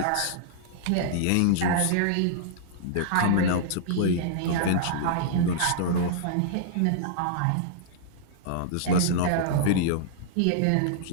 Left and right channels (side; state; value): both; different; correlation -0.01